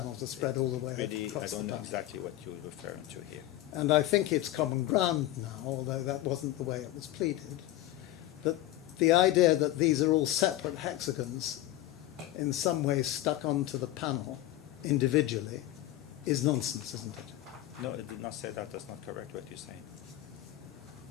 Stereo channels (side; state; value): right; quieter; 15.0 dB